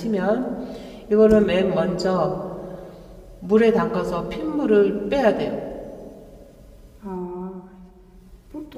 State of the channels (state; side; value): identical; both; correlation 1.00